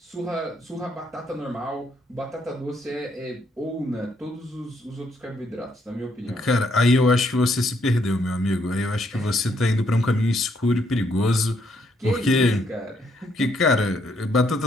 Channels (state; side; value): normal; both; correlation 0.73